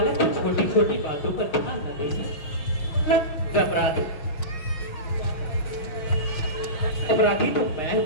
की छोटी छोटी बातों पर ध्यान न दीजिए। अपराधी तो मैं हूँ।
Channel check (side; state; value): right; late; 6.4 ms